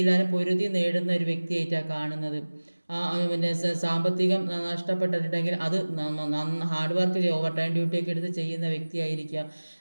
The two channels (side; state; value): both; inverted; correlation -1.00